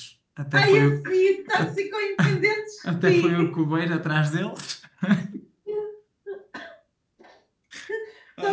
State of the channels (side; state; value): both; identical; correlation 1.00